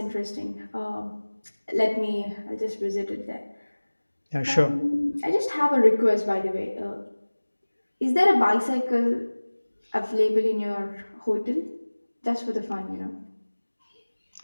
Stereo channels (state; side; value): inverted; both; correlation -1.00